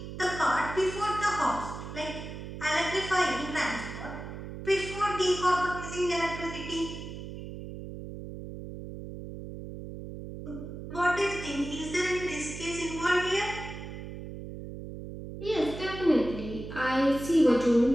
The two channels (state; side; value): noise; right; hum, 10 dB below the sound